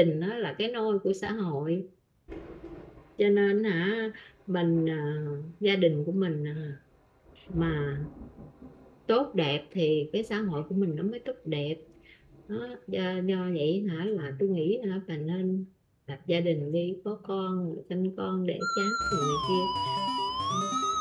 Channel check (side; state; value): both; identical; correlation 1.00